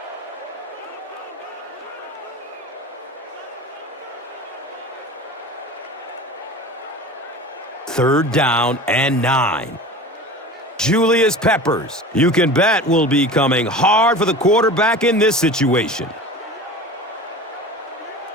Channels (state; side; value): normal; both; correlation 0.35